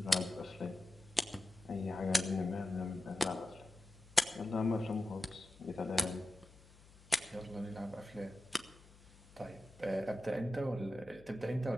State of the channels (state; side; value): noise; left; hum, 23 dB below the sound